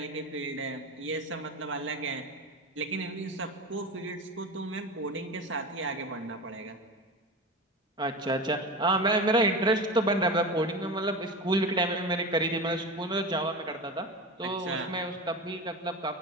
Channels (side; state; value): both; normal; correlation 0.27